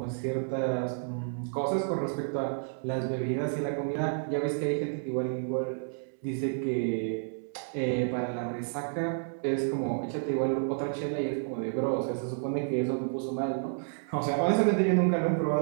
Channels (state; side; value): silent; left; digital silence